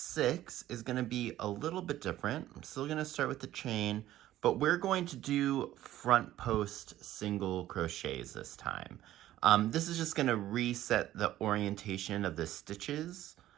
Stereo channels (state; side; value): quieter; left; 13.8 dB